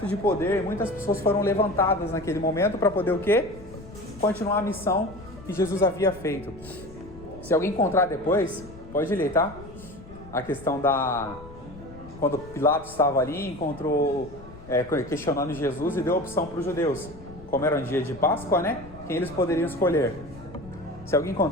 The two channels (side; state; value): left; noise; rumble, 18 dB below the sound